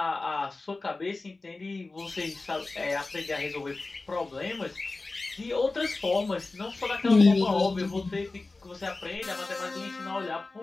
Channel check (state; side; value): quieter; right; 3.4 dB